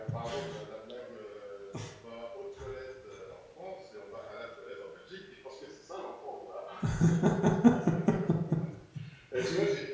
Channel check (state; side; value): identical; both; correlation 1.00